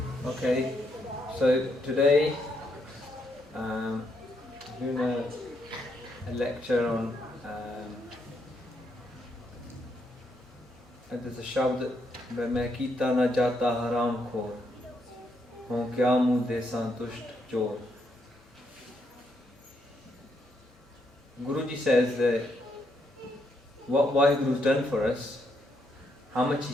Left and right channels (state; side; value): normal; both; correlation 0.77